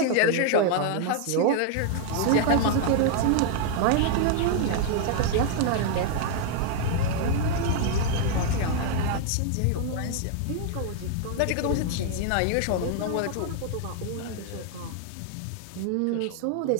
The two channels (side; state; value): both; different; correlation 0.00